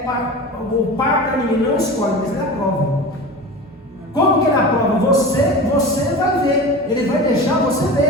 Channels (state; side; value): normal; both; correlation 0.32